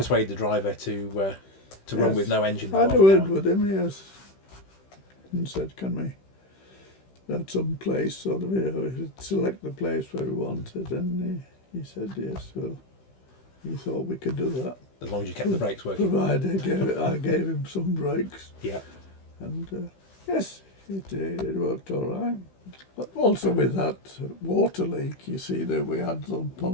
the driver to run with no engine. I had a word with him, yes, and said, can we at some place sort of, select the place where we wanted, and he said yes, well, he thought we could do that. As long as you kept the brakes working. Provided I gave him some brakes. Yeah. And yes, it worked all right. But also with that water leak, you see that we had some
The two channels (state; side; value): late; right; 16 ms